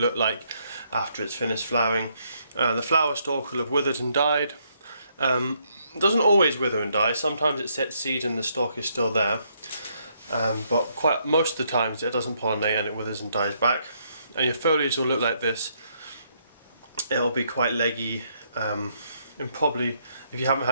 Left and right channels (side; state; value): both; inverted; correlation -0.73